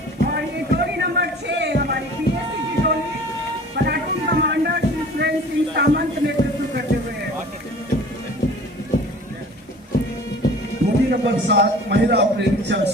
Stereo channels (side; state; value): both; normal; correlation 0.45